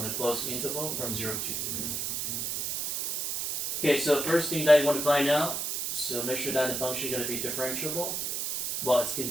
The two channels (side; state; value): right; noise; hiss, 2 dB below the sound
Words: a closed interval from 0 to 3. Okay, so first thing that you want to find out, so make sure that the function is going to be differentiable. Well, it's